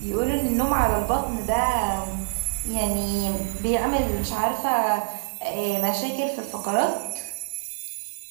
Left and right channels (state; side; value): silent; left; digital silence